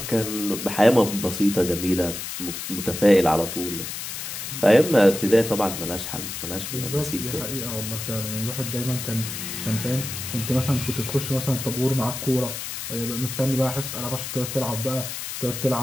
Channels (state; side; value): noise; left; hiss, 6 dB below the sound